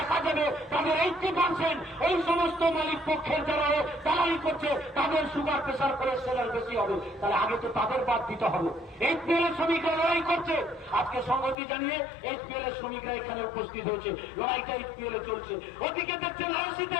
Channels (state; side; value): drops out; right; at 11.6 s